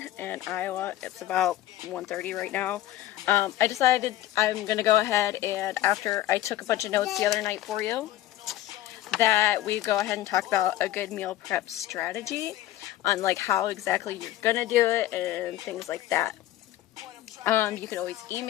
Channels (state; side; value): quieter; right; 14.2 dB